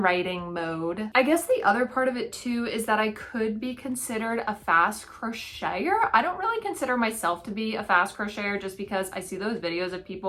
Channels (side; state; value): both; identical; correlation 1.00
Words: writing mode. I guess the other part of it too is that I could be considered a fast crocheter. I don't really consider myself to be a fast fast crocheter just because I see those videos of